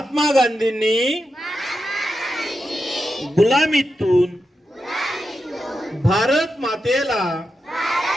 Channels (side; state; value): both; normal; correlation 0.88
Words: गांधींनी गुलामीतून भारत मातेला